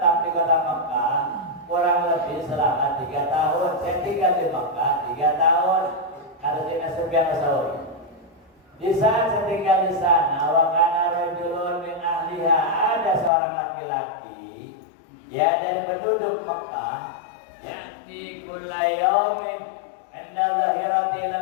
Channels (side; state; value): right; drops out; at 13.3 s